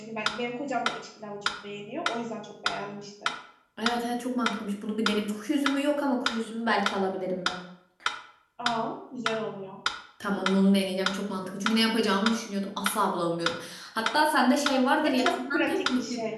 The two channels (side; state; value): both; identical; correlation 1.00